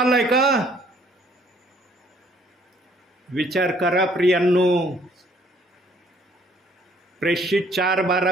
का? विचार करा प्रियांनो. प्रेषित 4:12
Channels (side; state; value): both; normal; correlation 0.62